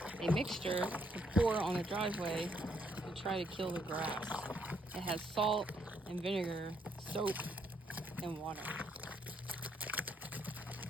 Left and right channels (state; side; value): normal; both; correlation 0.72